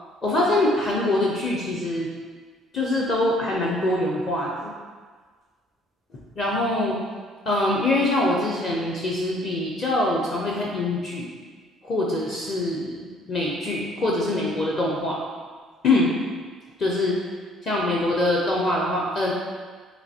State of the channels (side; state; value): both; normal; correlation 0.59